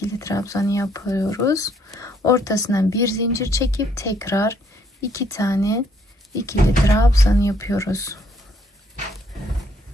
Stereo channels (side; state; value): both; normal; correlation 0.68